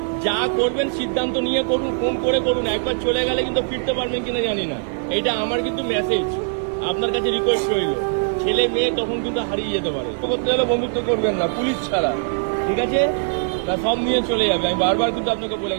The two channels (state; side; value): silent; left; digital silence